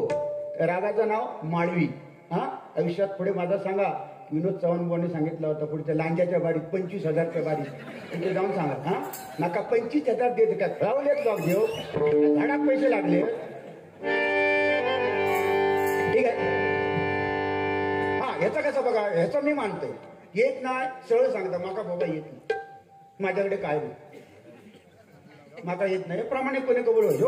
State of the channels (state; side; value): identical; both; correlation 1.00